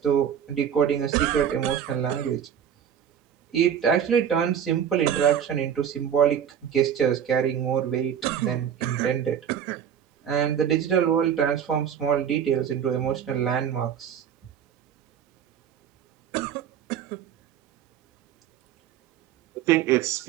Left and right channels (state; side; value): quieter; left; 8.8 dB